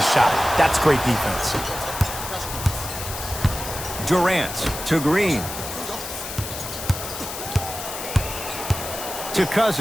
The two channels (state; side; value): noise; left; hiss, 8 dB below the sound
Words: shot. That's great defense. Durant to Green. To